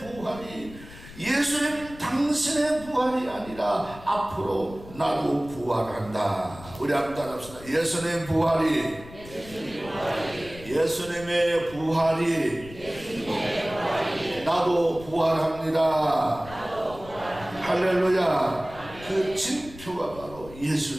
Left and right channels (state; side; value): noise; left; rumble, 17 dB below the sound